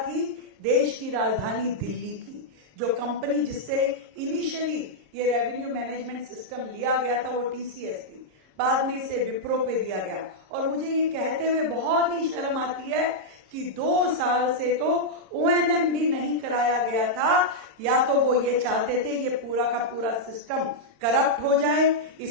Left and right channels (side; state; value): left; late; 26 ms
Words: देश की राजधानी दिल्ली की। जो कंपनी जिससे इनिशियली ये रेवेन्यू मैनेजमेंट सिस्टम लिया गया था वो टीसीएस थी, बाद में इसे विप्रो पे दिया गया। और मुझे ये कहते हुए बहुत ही शर्म आती है कि 2 साल से तो ओएनएम भी नहीं कराया गया था। या तो वो ये चाहते थे ये पूरा का पूरा सिस्टम करप्ट हो जाए,